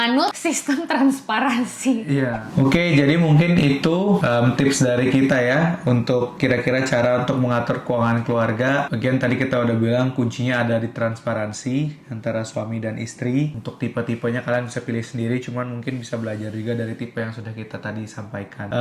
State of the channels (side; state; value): both; identical; correlation 1.00